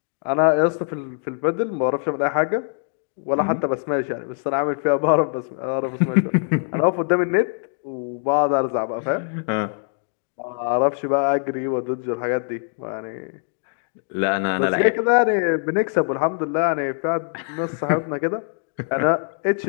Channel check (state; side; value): silent; right; digital silence